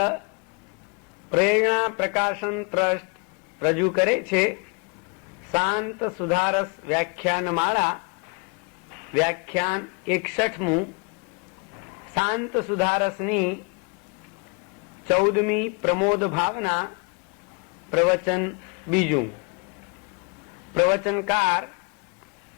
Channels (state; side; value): quieter; right; 32.4 dB